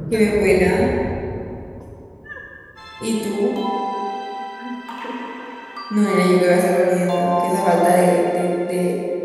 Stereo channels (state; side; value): identical; both; correlation 1.00